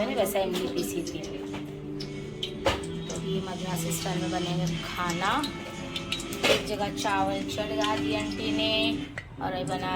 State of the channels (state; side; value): identical; both; correlation 1.00